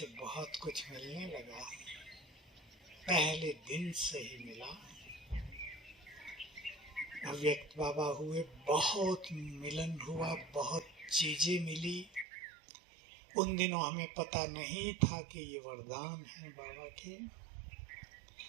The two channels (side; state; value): left; drops out; at 12.2 s